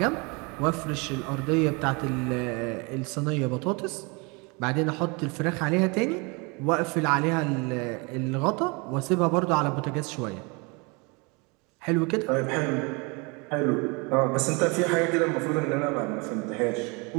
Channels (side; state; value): left; quieter; 29.5 dB